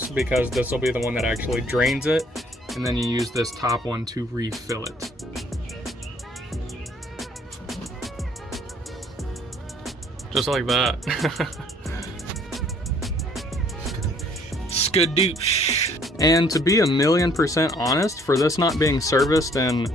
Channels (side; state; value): both; normal; correlation 0.60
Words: because this will be the one that actually drains it, and then you use this top one to refill it. Just like that. Skadoosh. And to be 1,000,000% honest, for this not being serviced in